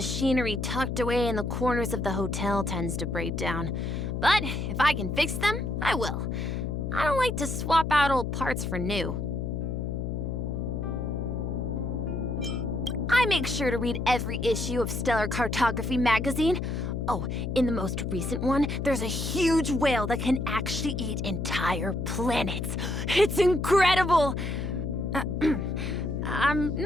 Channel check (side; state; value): left; noise; hum, 3 dB below the sound